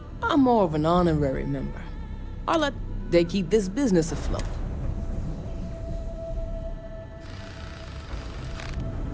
I'm more of an honorary member. They keep this business afloat.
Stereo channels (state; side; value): identical; both; correlation 1.00